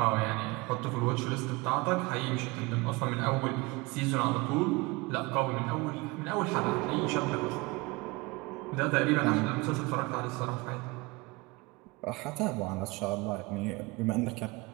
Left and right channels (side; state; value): left; quieter; 24.2 dB